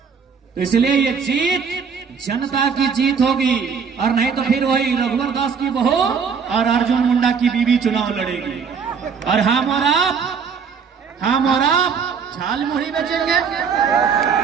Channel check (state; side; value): quieter; left; 6.2 dB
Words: तो इसलिए ये जीत जनता की जीत होगी, और नहीं तो फिर वही रघुवर दास की बहू और अर्जुन मुंडा की बीवी चुनाव लड़ेगी। और हम और आप झाल मुढ़ी बेचेंगे,